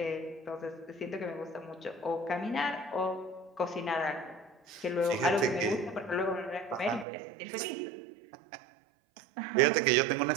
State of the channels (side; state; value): left; drops out; at 7.1 s